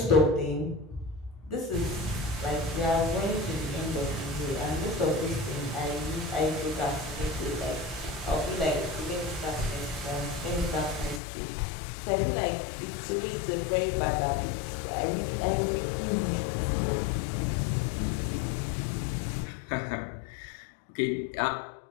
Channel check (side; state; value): right; drops out; at 11.2 s